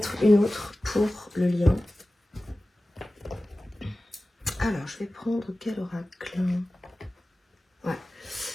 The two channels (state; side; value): normal; both; correlation 0.96